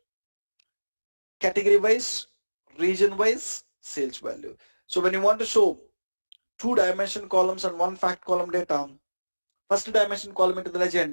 category wise, region wise sales value. So when you want to show 2-dimension columns and 1 fact column data, 1st-dimension column into the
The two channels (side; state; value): both; inverted; correlation -1.00